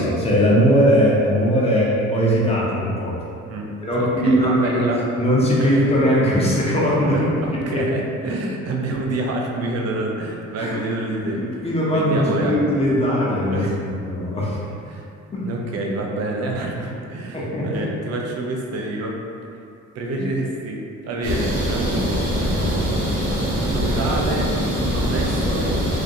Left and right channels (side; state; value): both; normal; correlation 0.45